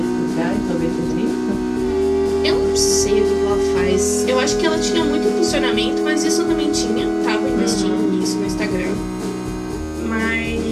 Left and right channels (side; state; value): both; identical; correlation 1.00